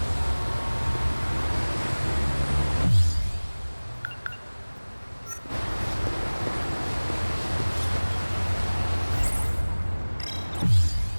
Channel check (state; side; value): inverted; both; correlation -1.00